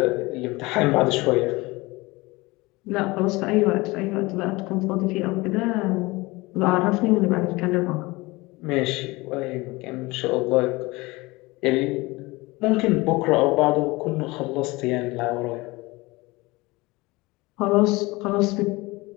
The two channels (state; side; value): quieter; right; 22.4 dB